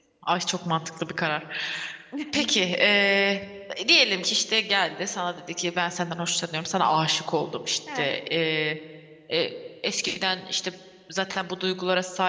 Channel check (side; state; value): both; identical; correlation 1.00